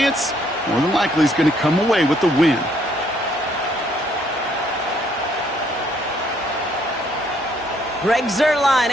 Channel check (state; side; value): normal; both; correlation 0.67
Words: more than likely is going to come away with the win. Greg Zuerlein